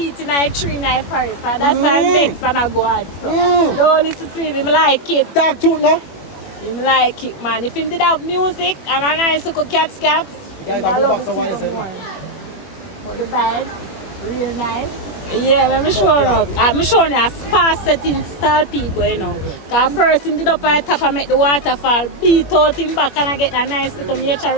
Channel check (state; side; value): late; right; 21 ms